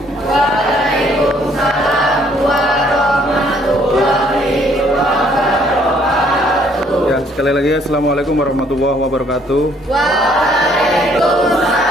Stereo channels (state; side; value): normal; both; correlation 0.63